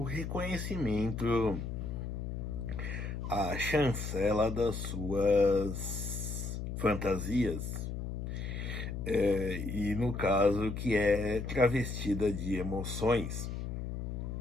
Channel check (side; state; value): left; noise; hum, 4 dB below the sound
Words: reconhecimento, a chancela das suas fantasias. E no caso que é travestida de emoções.